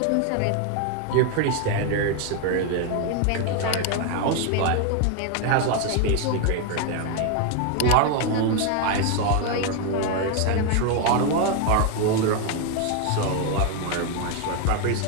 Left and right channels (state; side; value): different; both; correlation 0.01